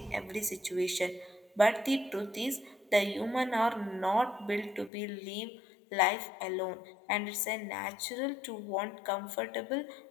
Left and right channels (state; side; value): drops out; right; at 4.9 s